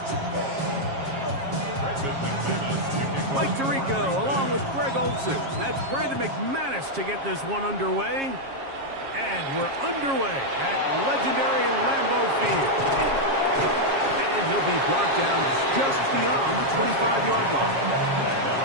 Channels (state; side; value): late; left; 7.4 ms